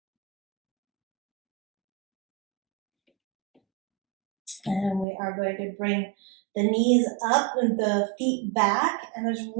And we are going to bring the knees up and the feet back, and just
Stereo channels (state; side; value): drops out; left; at 5.1 s